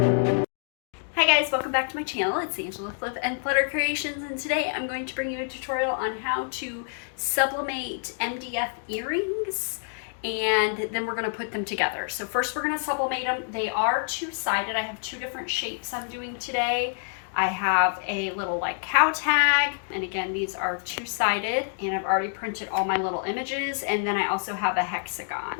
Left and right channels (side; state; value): right; silent; digital silence